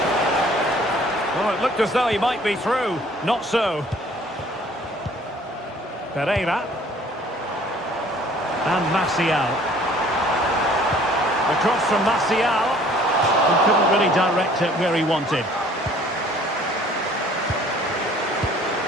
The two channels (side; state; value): both; normal; correlation 0.54